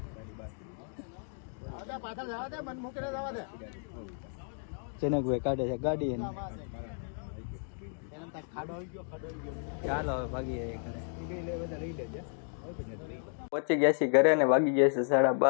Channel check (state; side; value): silent; right; 56 dB below the other